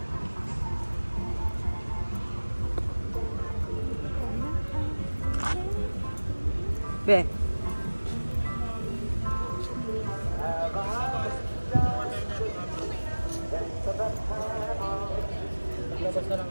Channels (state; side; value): inverted; both; correlation -1.00